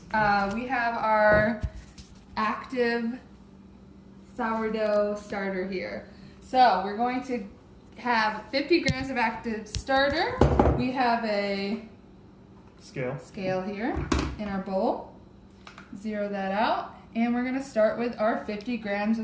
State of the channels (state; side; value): identical; both; correlation 1.00